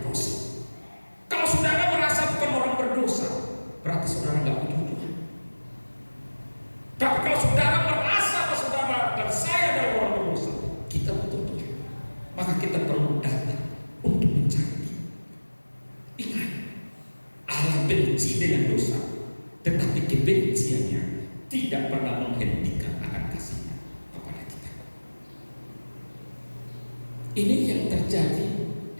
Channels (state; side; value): inverted; both; correlation -1.00